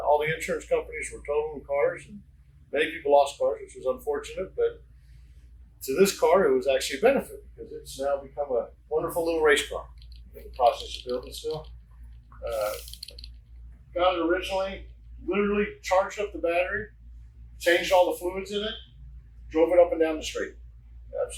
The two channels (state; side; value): identical; both; correlation 1.00